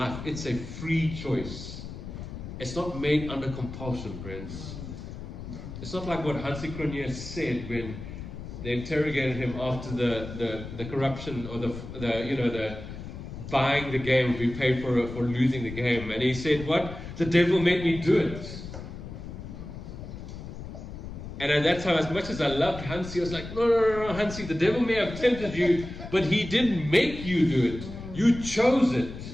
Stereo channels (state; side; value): noise; left; rumble, 10 dB below the sound